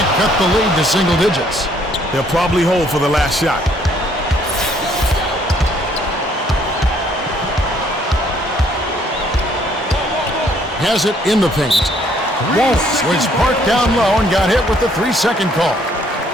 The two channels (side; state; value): both; normal; correlation 0.65